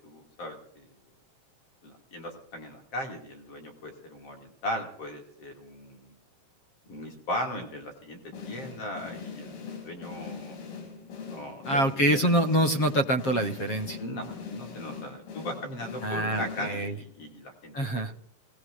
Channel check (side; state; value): right; late; 7.5 ms